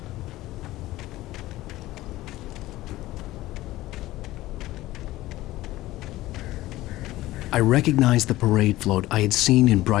I recognized the parade float I had seen in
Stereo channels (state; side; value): quieter; right; 16.9 dB